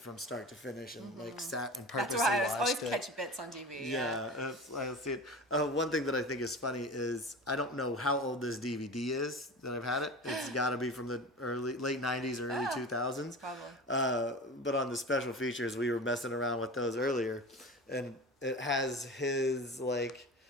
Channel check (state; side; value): normal; both; correlation 0.33